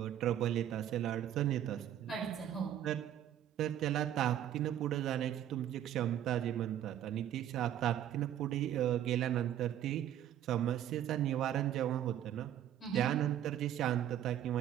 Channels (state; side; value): quieter; left; 11.1 dB